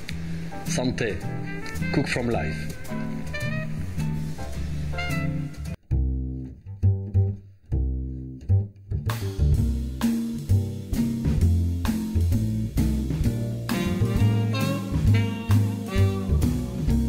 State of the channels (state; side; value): identical; both; correlation 1.00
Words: Santé, cook from life.